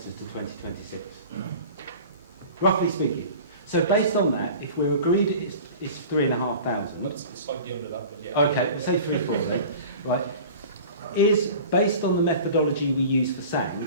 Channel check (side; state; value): both; inverted; correlation -0.40